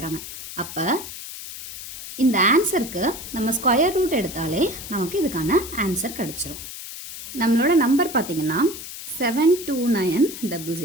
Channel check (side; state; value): left; noise; hiss, 11 dB below the sound